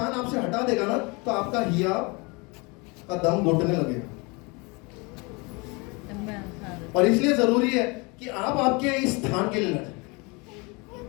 आपसे हटा देगा ना, तो आपका हिया का दम घुटने लगेगा। और इसलिए जरूरी है कि आप आपके इस स्थान के लिए लड़ें।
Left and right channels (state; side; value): quieter; right; 28.3 dB